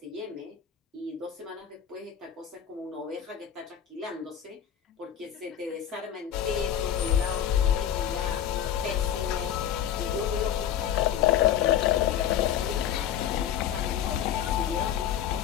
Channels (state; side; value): quieter; right; 9.8 dB